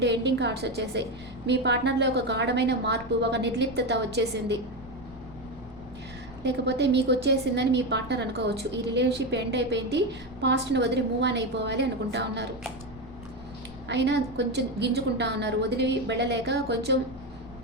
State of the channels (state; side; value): noise; left; rumble, 19 dB below the sound